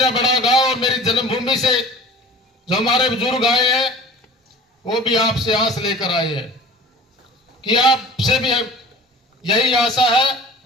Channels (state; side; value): normal; both; correlation 0.42